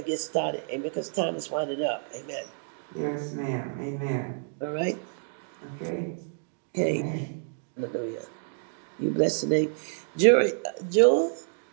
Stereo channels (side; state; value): left; silent; digital silence